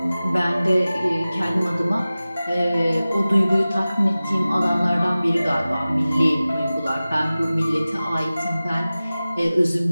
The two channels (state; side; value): inverted; both; correlation -0.97